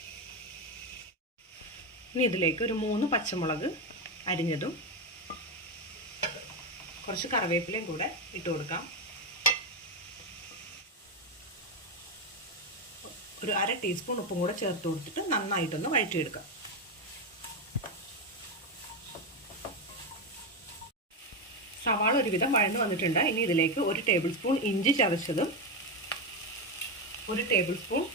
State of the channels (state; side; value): normal; both; correlation 0.10